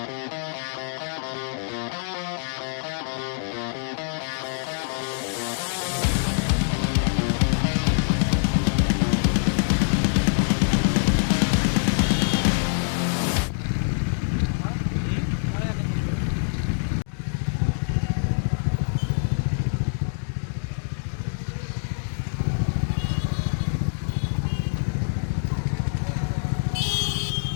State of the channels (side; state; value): right; silent; digital silence